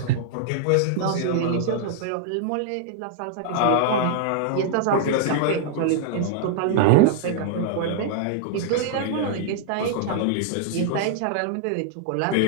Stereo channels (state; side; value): different; both; correlation -0.01